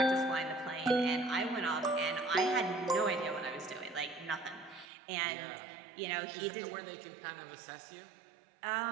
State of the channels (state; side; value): drops out; left; at 4.9 s